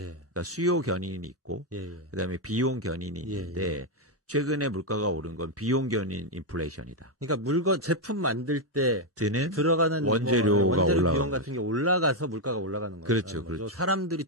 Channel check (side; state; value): both; normal; correlation 0.02